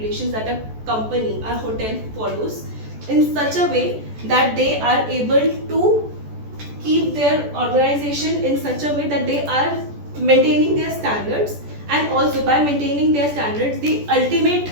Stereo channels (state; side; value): late; left; 14 ms